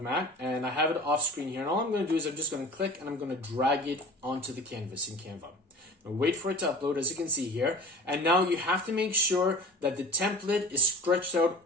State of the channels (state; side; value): normal; both; correlation 0.39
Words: mat and I have it off screen here. And all I'm going to do is I'm just going to click and I'm going to drag it onto the canvas in Canva. Now wait for it to upload, as you can see here. And now you have to make sure that the template is stretched out